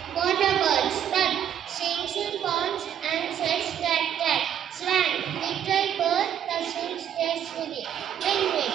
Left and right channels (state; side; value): quieter; left; 9.7 dB